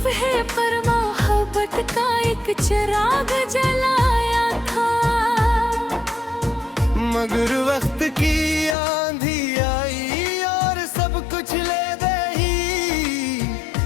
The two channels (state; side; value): drops out; right; at 8.8 s